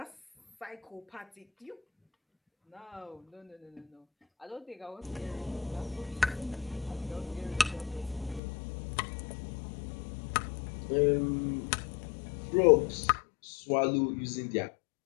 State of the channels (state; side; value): drops out; right; at 8.4 s